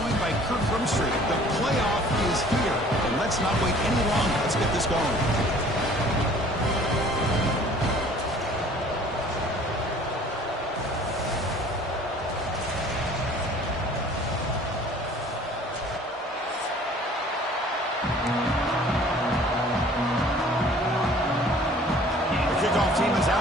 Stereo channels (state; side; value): normal; both; correlation 0.51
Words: by Kirk Brimstreet. The playoff is here, and let's not wait any longer. Let's get this going.